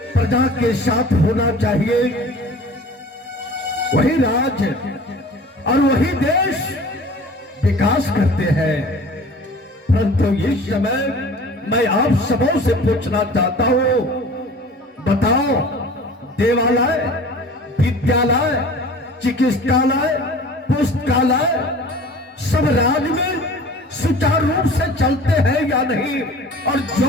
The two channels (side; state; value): both; normal; correlation 0.43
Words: प्रजा के साथ होना चाहिए। वही राज और वही देश विकास करते हैं। परंतु इस समय मैं आप सबों से पूछना चाहता हूं, बताओ, देवालय, विद्यालय, चिकित्सालय, पुस्तकालय सब राज में सुचारू रूप से चलते हैं या नहीं? और